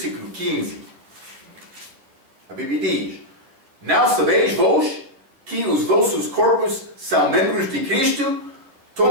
15. A Bíblia diz: Não sabeis vós que os vossos corpos são membros de Cristo?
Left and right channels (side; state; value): left; late; 11 ms